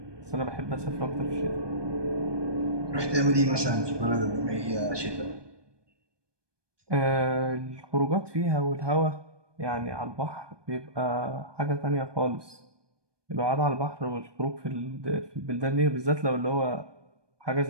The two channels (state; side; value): late; left; 1.2 ms